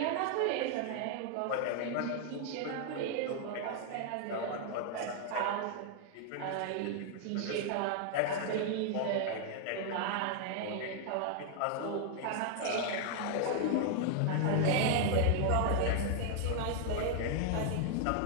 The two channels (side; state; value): both; different; correlation 0.00